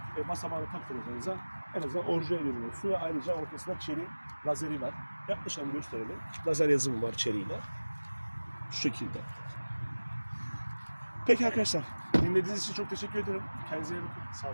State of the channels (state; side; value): inverted; both; correlation -1.00